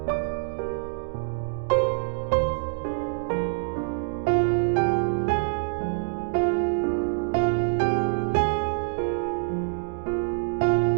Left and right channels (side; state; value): left; silent; digital silence